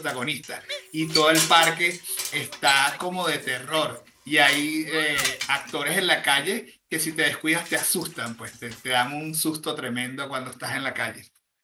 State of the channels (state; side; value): identical; both; correlation 1.00